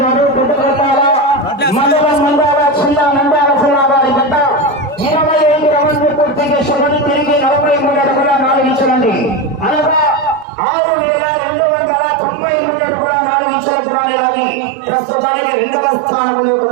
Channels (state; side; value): drops out; left; at 10.5 s